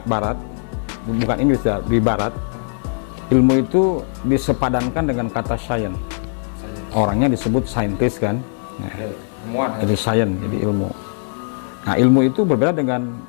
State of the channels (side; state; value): right; silent; digital silence